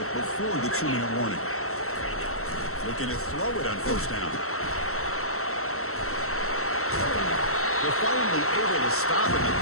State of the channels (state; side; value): late; right; 0.63 ms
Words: before the 2-minute warning. Looking to throw it on first down. They're finally able to stop him. The